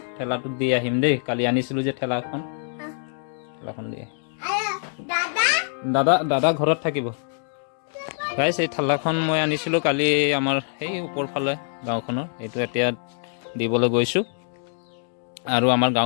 ঠেলাটোত দি আহিম দেই কালি আনিছিলোঁ যে ঠেলাখন দি দাদা ঘৰত থাকিব গাইছ এই ঠেলাখন মই আনিছিলোঁ কালি আমাৰ সেই ওপৰ ফালে গাঁওখনৰ এইটো এতিয়া দিবলৈ গৈছোঁ আৰু আমাৰ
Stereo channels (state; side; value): silent; right; 62 dB below the other